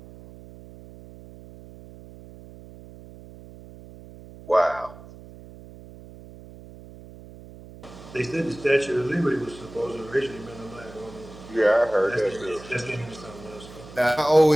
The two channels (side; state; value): right; noise; hum, 18 dB below the sound